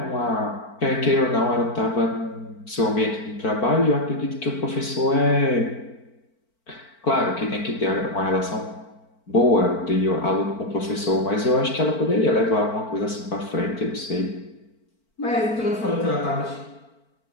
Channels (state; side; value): late; right; 4.5 ms